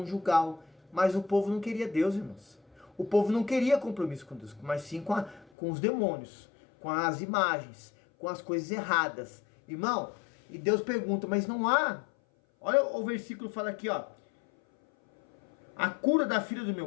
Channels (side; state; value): right; drops out; at 5.5 s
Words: Mas o povo não queria Deus, irmãos. O povo não queria compromisso com Deus, mas sim com os demônios, com as imagens, com as coisas erradas. Irmão, e Deus pergunta, mas não há. Olha o versículo, fala aqui, ó. A cura da filha do